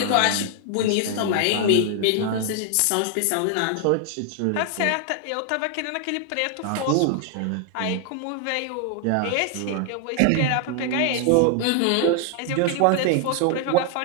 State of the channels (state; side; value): different; both; correlation 0.00